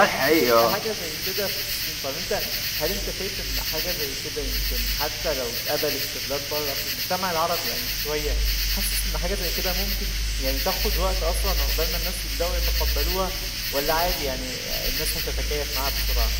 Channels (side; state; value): both; identical; correlation 1.00